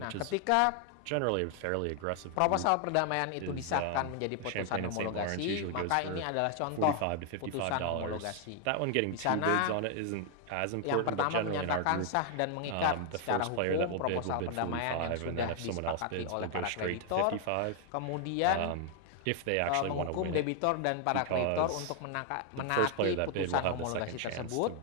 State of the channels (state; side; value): different; both; correlation 0.00